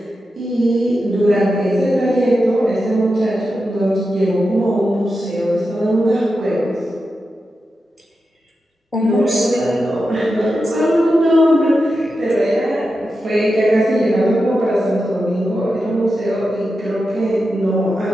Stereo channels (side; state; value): both; normal; correlation 0.90